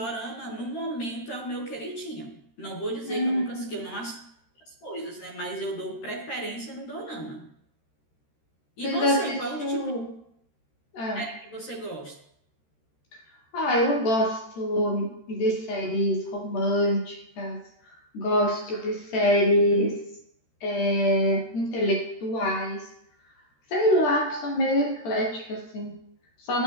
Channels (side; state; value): right; late; 13 ms